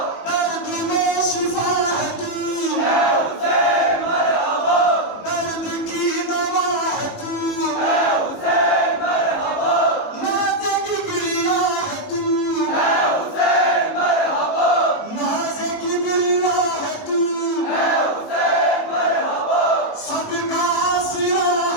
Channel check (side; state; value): right; late; 18 ms